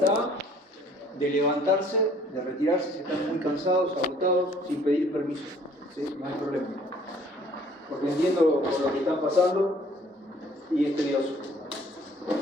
de levantarse, de retirarse si están muy cansados, agotados, sin pedir permiso. ¿Sí? No hay problema. Porque entiendo por lo que están pasando y es tedioso.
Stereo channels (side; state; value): both; normal; correlation 0.56